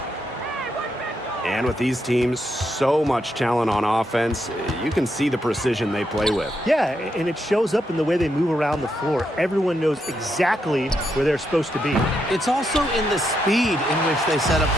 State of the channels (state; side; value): normal; both; correlation 0.81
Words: And with these teams, so much talent on offense, you can see the precision they play with. Yeah, and it shows up in the way they move around the floor. Everyone knows exactly where they're supposed to be. It's also in the speed in which they set up